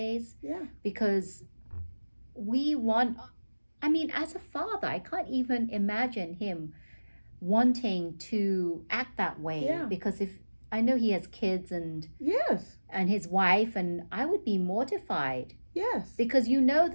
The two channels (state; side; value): inverted; both; correlation -1.00